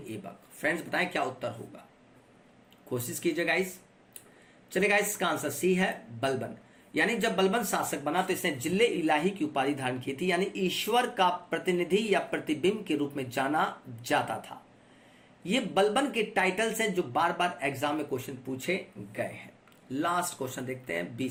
ऐबक। फ्रेंड्स बताएं क्या उत्तर होगा, कोशिश कीजिए गाइस। चलिए गाइस, इसका आंसर सी है बलबन। यानी जब बलबन शासक बना तो इसने जिले इलाही की उपाधि धारण की थी, यानी ईश्वर का प्रतिनिधि या प्रतिबिंब के रूप में जाना जाता था। ये बलबन के टाइटल्स हैं जो बार बार एग्जाम में क्वेश्चन पूछे गए हैं। लास्ट क्वेश्चन देखते हैं,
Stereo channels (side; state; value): both; identical; correlation 1.00